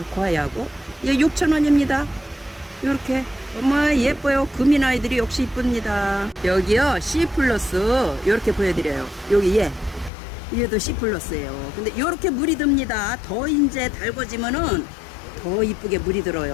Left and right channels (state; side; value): drops out; right; at 10.1 s